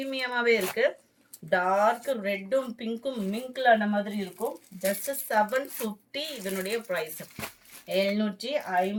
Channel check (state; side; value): identical; both; correlation 1.00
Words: இருக்குது. டார்க் ரெட்டும் பிங்க்கும் மிங்க்ல அந்த மாதிரி இருக்கும். ஜஸ்ட் 750 இதனுடைய ப்ரைஸ்.